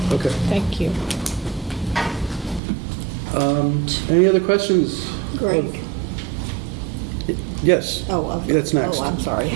Okay. Thank you. Any other questions? Greg. Yes. Oh, okay. That's next. Oh, I'm sorry.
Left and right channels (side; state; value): left; drops out; at 2.6 s